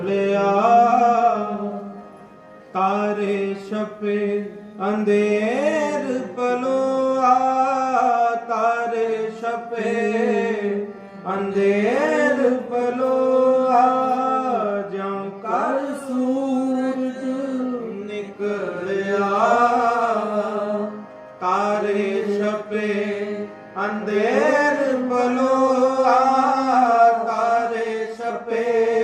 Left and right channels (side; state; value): both; identical; correlation 1.00